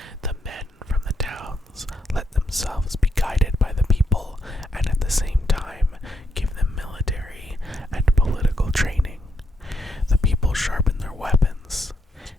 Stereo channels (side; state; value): both; normal; correlation 0.77